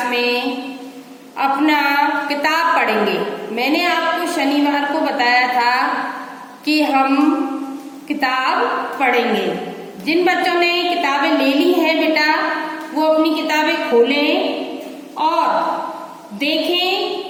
में अपना किताब पढ़ेंगे। मैंने आपको शनिवार को बताया था कि हम किताब पढ़ेंगे। जिन बच्चों ने किताबें ले ली हैं बेटा, वो अपनी किताबें खोलें और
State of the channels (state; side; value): identical; both; correlation 1.00